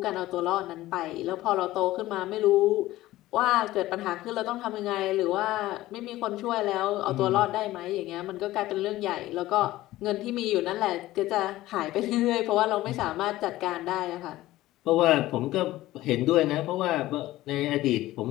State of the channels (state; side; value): quieter; right; 16.3 dB